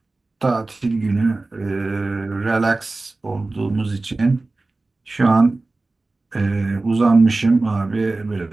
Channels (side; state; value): left; quieter; 3.2 dB